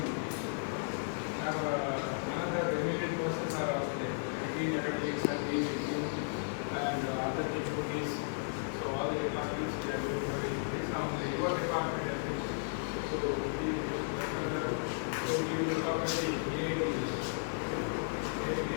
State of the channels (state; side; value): silent; right; digital silence